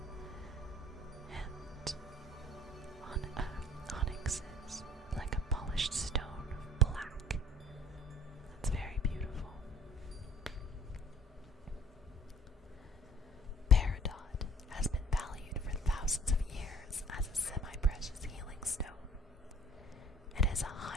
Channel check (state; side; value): normal; both; correlation 0.53